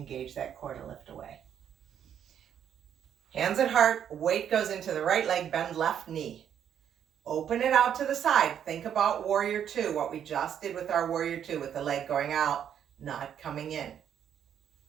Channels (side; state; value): left; quieter; 9.1 dB